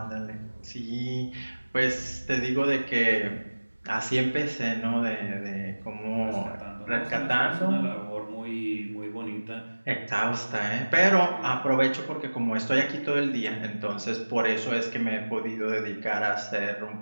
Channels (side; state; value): both; inverted; correlation -1.00